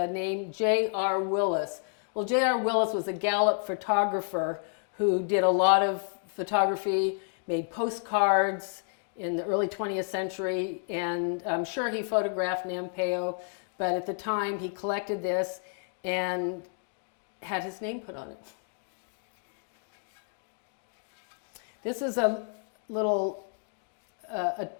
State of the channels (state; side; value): silent; right; 55 dB below the other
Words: name J.R. Willis. Well, J.R. Willis was a Gallup photographer who did a lot of photography, made postcards in the early 20th century, and I'm sure he photographed Nampe, but at the time he collected this and had his name put on it. This is a little